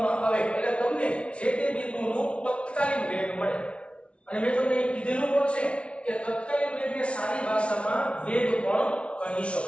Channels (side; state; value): right; late; 0.060 ms